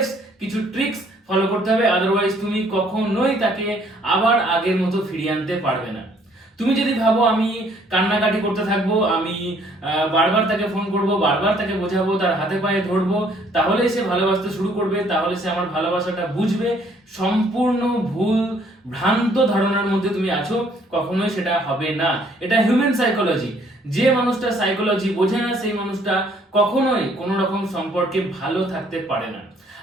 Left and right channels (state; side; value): normal; both; correlation 0.62